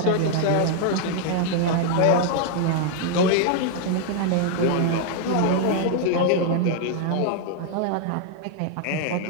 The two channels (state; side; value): different; both; correlation 0.00